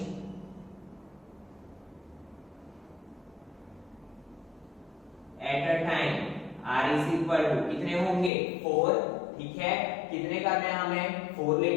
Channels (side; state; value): right; drops out; at 8.3 s